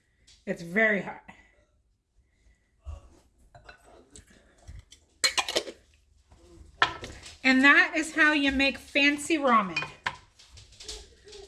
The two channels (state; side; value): identical; both; correlation 1.00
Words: It's very hot. And that is how you make fancy ramen.